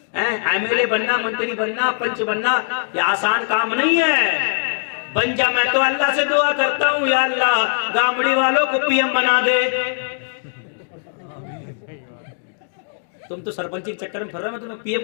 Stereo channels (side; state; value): right; silent; digital silence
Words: ایم ایل اے بننا, منتری بننا, پنچ بننا یہ آسان کام نہیں ہے. بن جا, میں تو اللہ سے دعا کرتا ہوں یا اللہ گامڑی والوں کو پی ایم بنا دے. تم تو سرپنچی کے چکر میں پھر رہے, میں تمہیں پی